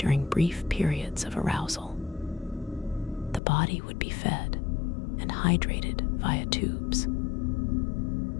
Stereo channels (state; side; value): drops out; right; at 3.4 s